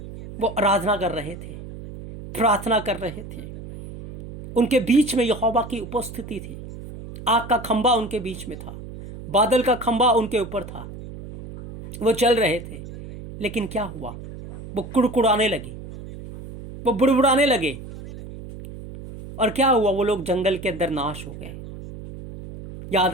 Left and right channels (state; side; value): noise; right; hum, 12 dB below the sound